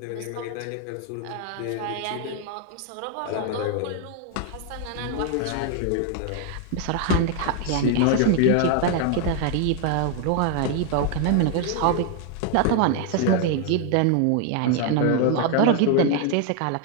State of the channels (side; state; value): both; different; correlation 0.00